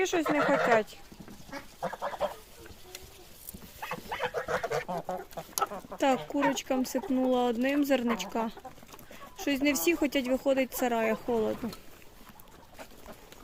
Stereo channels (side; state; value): both; identical; correlation 1.00